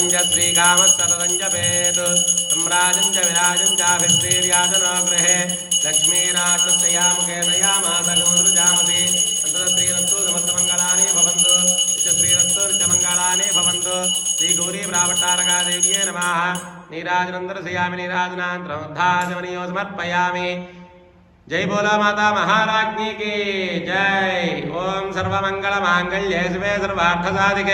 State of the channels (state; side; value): identical; both; correlation 1.00